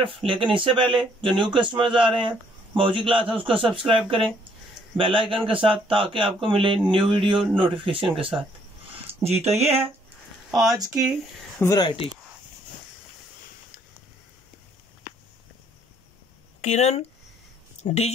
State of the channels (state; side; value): normal; both; correlation 0.65